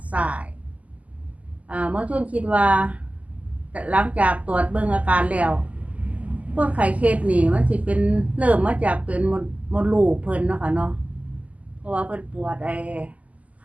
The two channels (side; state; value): left; late; 0.071 ms